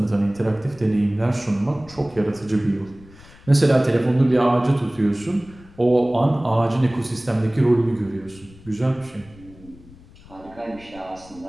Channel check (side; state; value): left; noise; rumble, 23 dB below the sound